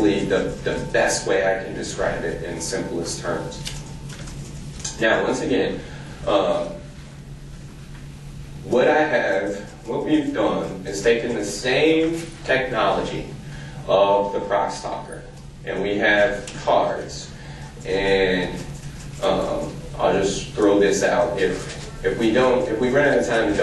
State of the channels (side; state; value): both; identical; correlation 1.00